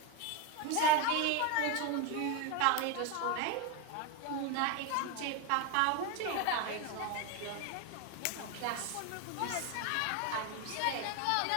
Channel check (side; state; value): both; different; correlation 0.03